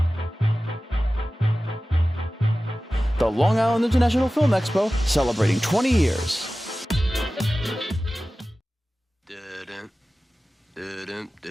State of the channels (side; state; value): both; normal; correlation 0.96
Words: The Long Island International Film Expo, celebrating 20 years.